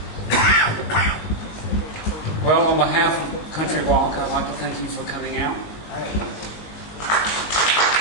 Well, on behalf of Country Walk, I'd like to thank you for coming out.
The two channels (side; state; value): right; late; 19 ms